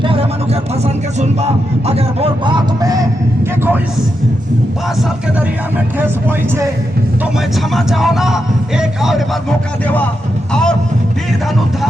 मनुकर पसंद के सुनबा अगर वो बात में कि कोई 5 साल के दरिया में ठेस पहुंचे तो मैं क्षमा चाहो ना, एक और बार मौका देवा और वीर धनु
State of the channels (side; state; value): both; normal; correlation 0.85